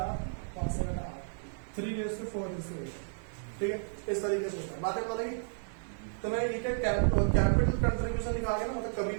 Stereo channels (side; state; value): left; silent; digital silence